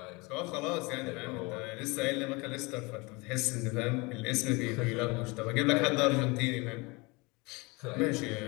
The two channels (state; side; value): quieter; right; 26.3 dB